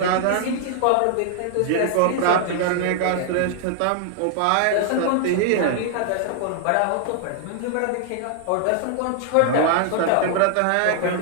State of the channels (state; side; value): different; both; correlation 0.00